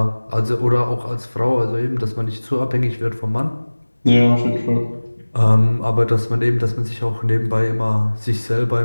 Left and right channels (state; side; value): inverted; both; correlation -1.00